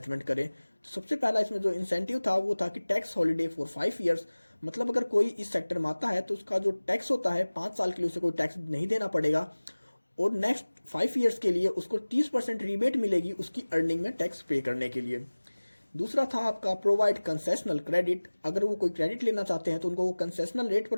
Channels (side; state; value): both; inverted; correlation -1.00